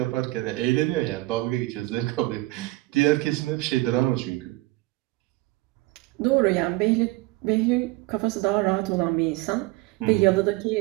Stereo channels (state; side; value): quieter; left; 20.6 dB